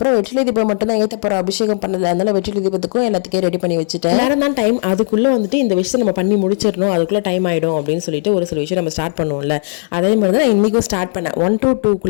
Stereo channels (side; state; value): right; silent; digital silence